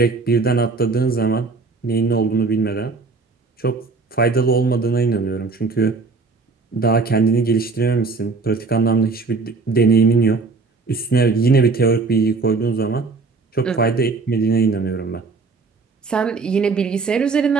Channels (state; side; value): quieter; left; 4.2 dB